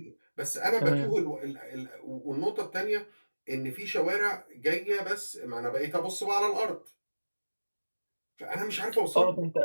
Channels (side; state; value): both; inverted; correlation -1.00